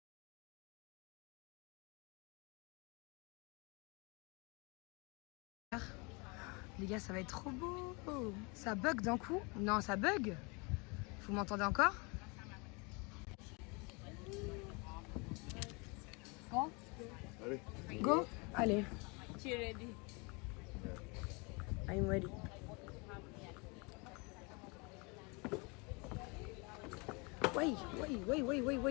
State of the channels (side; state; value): right; quieter; 29.9 dB